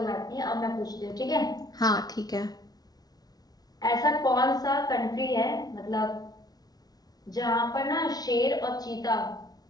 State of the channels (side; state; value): right; late; 0.19 ms